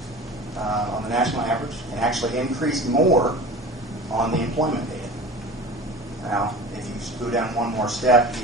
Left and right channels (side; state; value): both; normal; correlation 0.36